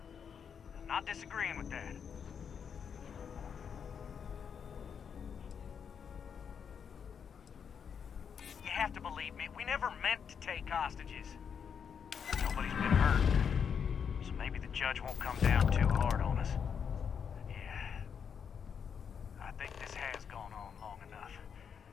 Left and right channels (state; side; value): quieter; right; 7.1 dB